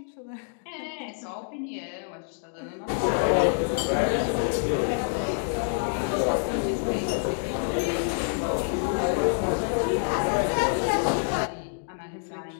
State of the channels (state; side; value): silent; right; digital silence